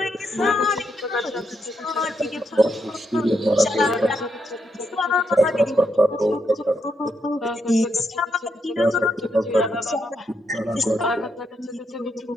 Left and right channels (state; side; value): normal; both; correlation 0.80